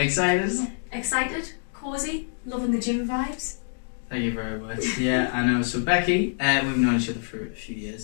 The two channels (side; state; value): right; silent; digital silence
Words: Excited, cosy, loving the gym vibes. Thank you very much. Yeah, I know. So Becky, we've known each other for a few